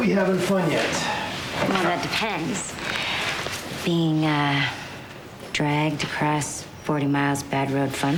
having fun yet? Well, that depends. Being, dragged across 40 miles bad road fun?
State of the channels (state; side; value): identical; both; correlation 1.00